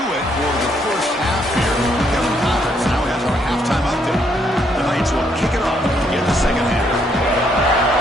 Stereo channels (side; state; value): both; normal; correlation 0.72